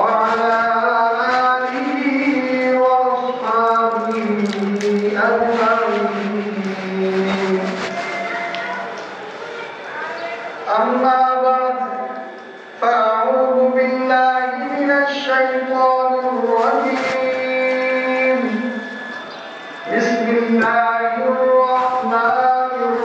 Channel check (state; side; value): identical; both; correlation 1.00